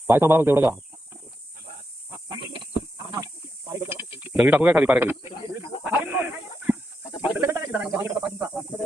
पाय सांभाळा तेवढं का. दगडी टाकू काय खाली पाय खाली.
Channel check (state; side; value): normal; both; correlation 0.84